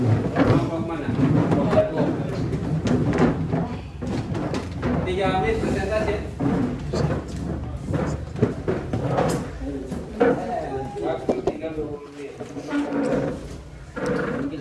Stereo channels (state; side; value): identical; both; correlation 1.00